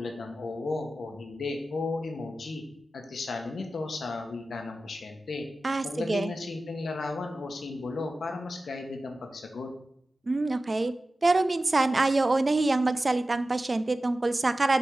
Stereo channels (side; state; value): both; normal; correlation 0.95